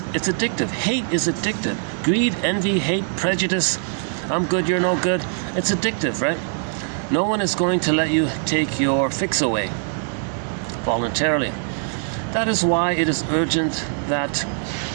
it's addictive. Hate is addictive. Greed, envy, hate, prejudice, I'm good, you're no good, it's addictive, right? No one is going to let you take your fix away voluntarily. That is why it is urgent that,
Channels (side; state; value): left; silent; 64 dB below the other